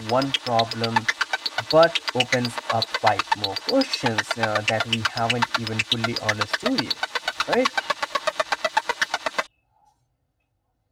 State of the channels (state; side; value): identical; both; correlation 1.00